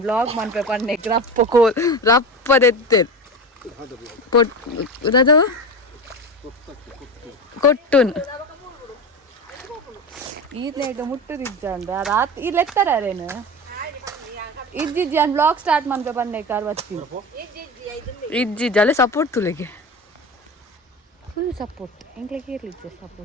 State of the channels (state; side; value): normal; both; correlation 0.26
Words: ಬ್ಲಾಗ್ ಮನ್ಪೆ ಪನ್ನೆ ರಪ್ಪದೆತ್ತೆ ಕೊಟ್ಟುನ್ ಈತೆಂಡ ಮುಟ್ಟುದಿದ್ದ ರಾತ್ರಿ ಇಲ್ಲಿ ಎತ್ತರೇನು ಇಜ್ಜಿಜ್ಜಿ ನಾನು ಬ್ಲಾಗ್ ಸ್ಟಾರ್ಟ್ ಮನ್ಪೆ ಪನ್ನೆ ಕಾರ್ವತ್ತಿ ಇಜ್ಜಿಜ್ಜಿ ಅಲ್ಲೇ ಸಪೋರ್ಟ್ ತುಲೆಗೆ ಫುಲ್ ಸಪೋರ್ಟ್ ಎಂಗ್ಲಿಗೆ ಇರ್ಲಿಕ್ಕೆ